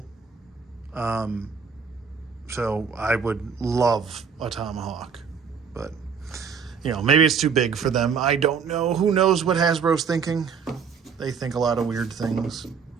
So I would love a Tomahawk, but you know, maybe it's too big for them. I don't know. Who knows what Hasbro's thinking? They think a lot of weird things,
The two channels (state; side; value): quieter; left; 6.2 dB